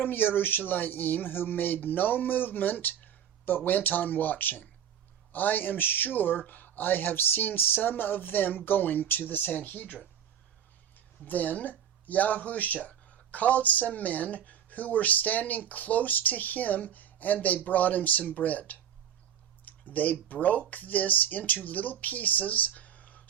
Jerusalem, who made no movement but went on watching. I am sure I have seen some of them going to the Sanhedrin. Then Yahusha called some men who were standing close to him, and they brought him some bread. They broke this into little pieces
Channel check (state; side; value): quieter; left; 9.2 dB